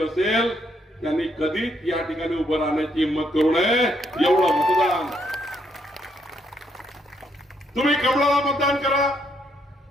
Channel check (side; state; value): both; normal; correlation 0.73